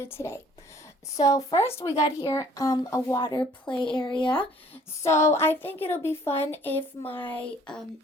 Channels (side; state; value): both; normal; correlation 0.57